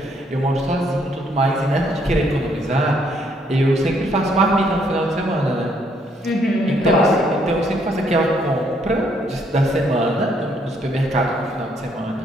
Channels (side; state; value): both; normal; correlation 0.70